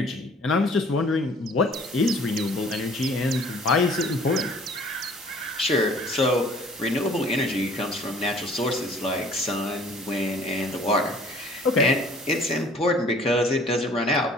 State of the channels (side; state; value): both; normal; correlation 0.53